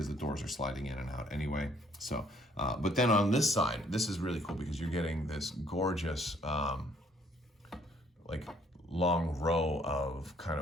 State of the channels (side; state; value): both; normal; correlation 0.63